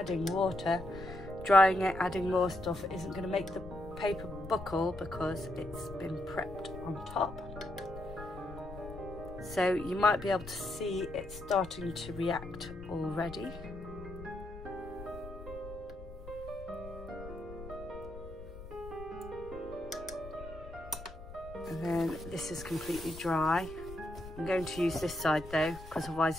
water, drying it, adding more stuff isn't going to make the paper buckle because it's been prepped on top. So you might be able to see it starting to react already. And then this is completely dry. I'm going to use this side though, because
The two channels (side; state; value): left; noise; rumble, 14 dB below the sound